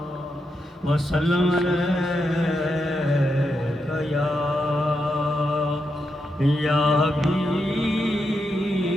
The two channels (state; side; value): normal; both; correlation 0.84